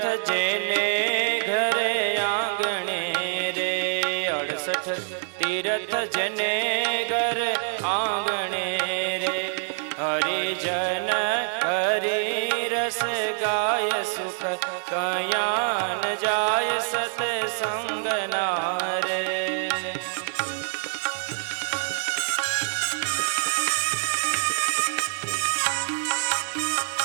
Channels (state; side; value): silent; left; digital silence